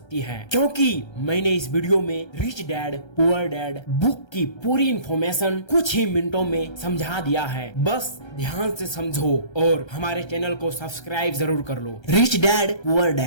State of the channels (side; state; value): right; late; 1.3 ms